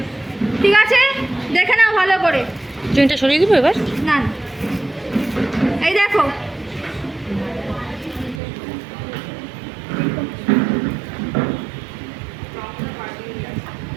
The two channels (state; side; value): drops out; left; at 8.4 s